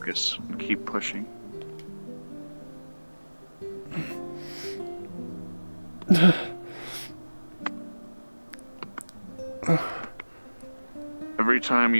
and keep pushing. Every time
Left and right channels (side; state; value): both; inverted; correlation -1.00